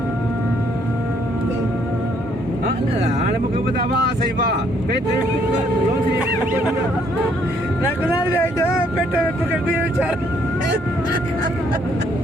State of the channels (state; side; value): normal; both; correlation 0.68